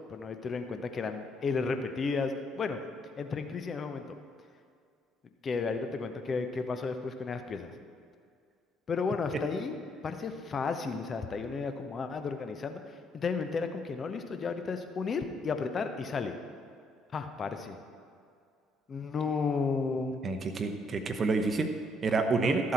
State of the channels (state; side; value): normal; both; correlation 0.72